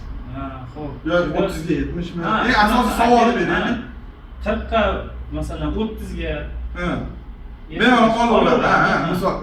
xo'p. Yo, 30 ga 70 mi? Asosiy savolni beraylik. 40 ga, masalan, 30 ga. Bemalol qolaveradi, misol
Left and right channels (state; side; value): identical; both; correlation 1.00